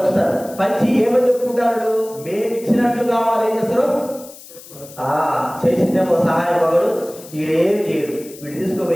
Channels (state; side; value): noise; left; hiss, 19 dB below the sound